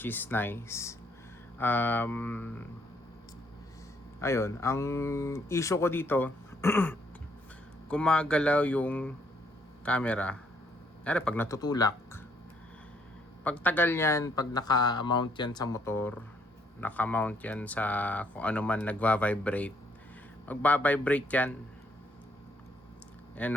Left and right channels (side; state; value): both; normal; correlation 0.69